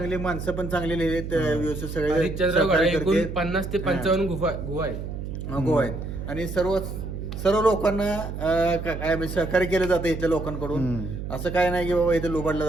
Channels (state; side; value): noise; right; hum, 7 dB below the sound